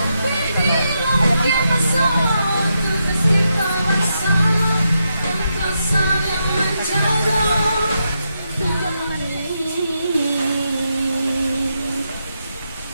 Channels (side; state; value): both; inverted; correlation -0.84